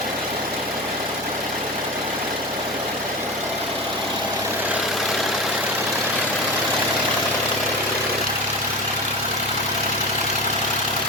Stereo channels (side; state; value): both; normal; correlation 0.27